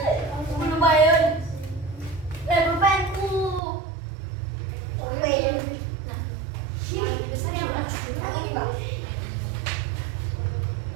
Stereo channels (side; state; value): left; drops out; at 3.6 s